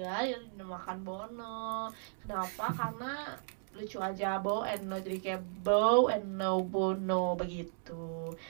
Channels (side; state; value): left; silent; digital silence